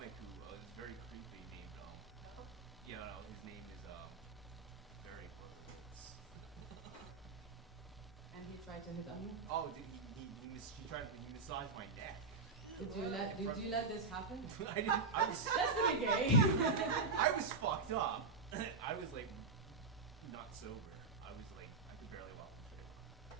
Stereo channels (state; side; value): quieter; left; 4.0 dB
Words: who is very creepy named his name is very And he tried to hit on you? oh, he massaged my neck. Did you let this happen? I didn't. I was That's pretty gay. I was fucked up. I was like not sober. I was like I could barely walk the street.